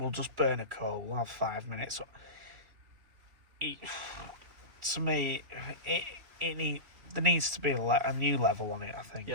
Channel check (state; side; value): late; left; 3.4 ms